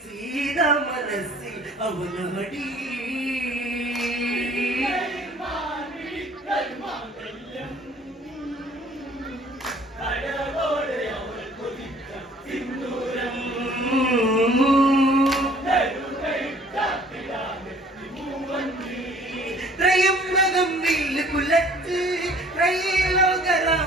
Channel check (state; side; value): normal; both; correlation 0.54